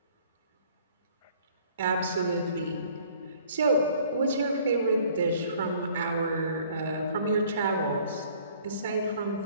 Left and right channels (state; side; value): inverted; both; correlation -0.56